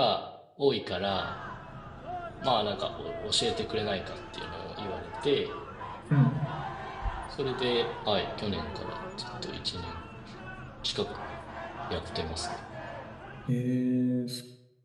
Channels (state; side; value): identical; both; correlation 1.00